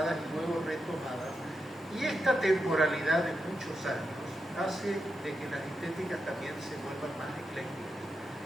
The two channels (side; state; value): both; normal; correlation 0.87